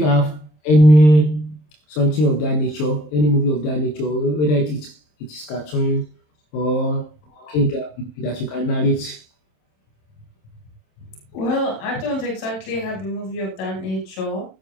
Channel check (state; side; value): late; right; 26 ms